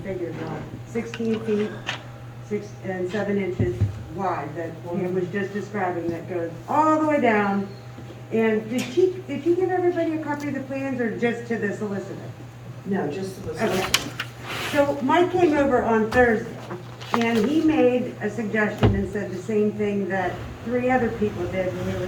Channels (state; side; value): identical; both; correlation 1.00